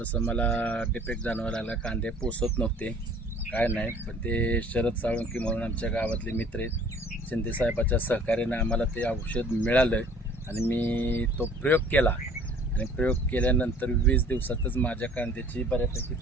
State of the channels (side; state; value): both; normal; correlation 0.52